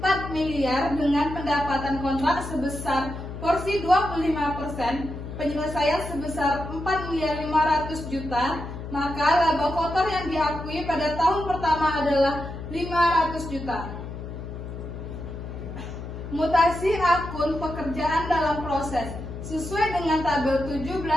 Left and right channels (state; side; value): noise; left; hum, 9 dB below the sound